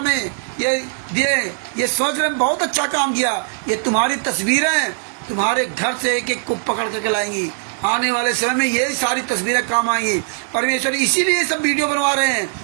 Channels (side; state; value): left; silent; 60 dB below the other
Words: में ये दिए, ये सोच रहे बहुत अच्छा काम किया। ये तुम्हारी तस्वीरें तुम्हारे घर से एक एक को पकड़ करके लाएंगी। आने वाले समय में ये सारी तस्वीरें काम आएंगी। परमेश्वर इसीलिए सब वीडियो बनवा रहे हैं,